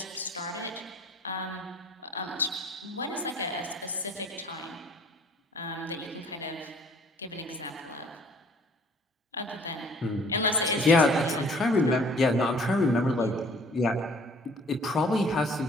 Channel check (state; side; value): normal; both; correlation 0.55